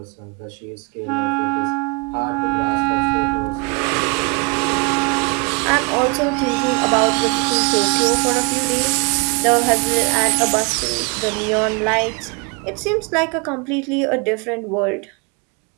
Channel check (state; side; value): quieter; left; 31.7 dB